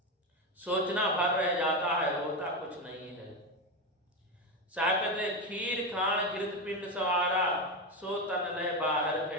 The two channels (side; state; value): both; normal; correlation 0.14